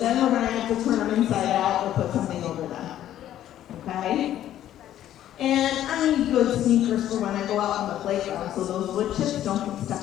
we're going to have to turn them inside out or put something over them. Okay? And I need good sneakers for when I go out on the playground so those wood chips don't get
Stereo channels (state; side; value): quieter; right; 12.0 dB